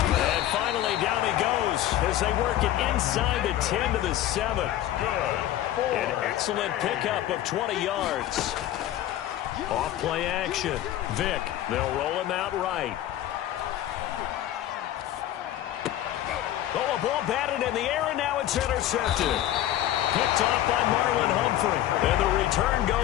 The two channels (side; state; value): right; quieter; 12.9 dB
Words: And finally down he goes as they work it inside the 10 to the 7. An excellent pickup of 20 yards. Off play action. Vic, they'll roll him out right. Oh, a ball batted in the air, and now it's intercepted. Picked off by Marlon Humphrey. And the return